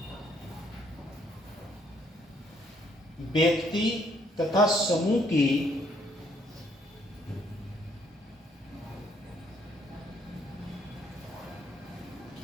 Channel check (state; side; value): normal; both; correlation 0.68